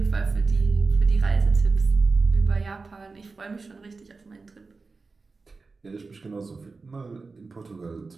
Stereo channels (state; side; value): quieter; left; 4.1 dB